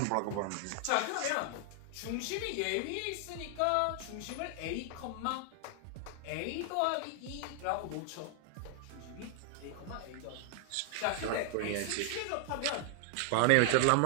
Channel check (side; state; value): both; different; correlation 0.00